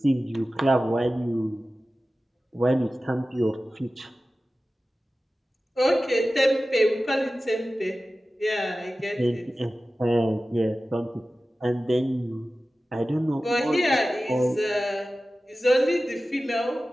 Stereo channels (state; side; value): normal; both; correlation 0.95